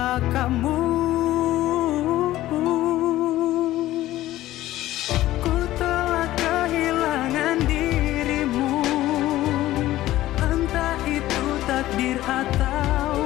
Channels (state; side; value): quieter; right; 15.3 dB